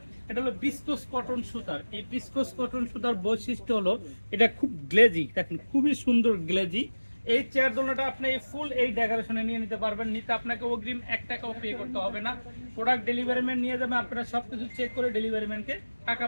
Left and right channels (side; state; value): both; inverted; correlation -1.00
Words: এটা হলো বিস্কোস কটন সুতার। এই বিস্কোস কটন সুতার বৈশিষ্ট্য হলো এটা খুব গ্লেজি, দেখেন খুবই সুন্দর গ্লেজি। এই চেয়ার দোলনাটা আপনি ফুল এই ডেকোরেশনে নিয়ে নিতে পারবেন। নিতে আপনাকে অগ্রিম 1 টাকাও পে করতে হবে না। প্রোডাক্ট ডেলিভারি ম্যান নিয়ে যাবে, আপনারা সবকিছু চেক করে ডেলিভারি ম্যানকে টাকা